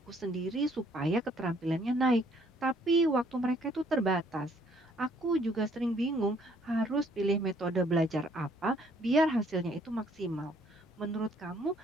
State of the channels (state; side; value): normal; both; correlation 0.64